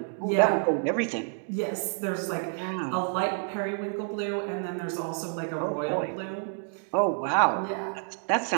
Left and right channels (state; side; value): silent; left; 59 dB below the other